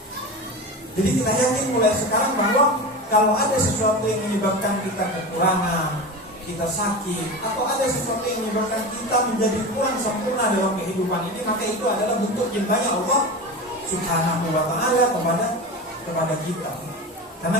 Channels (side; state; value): both; normal; correlation 0.26